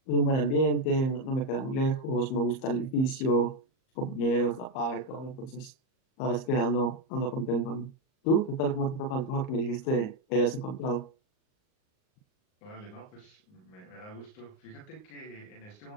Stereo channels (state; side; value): late; right; 38 ms